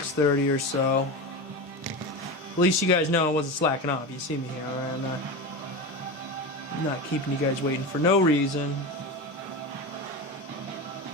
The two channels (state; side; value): normal; both; correlation 0.23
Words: or so. At least you guys know I wasn't slacking off. You see me here, alright? I'm not keeping you guys waiting for no reason.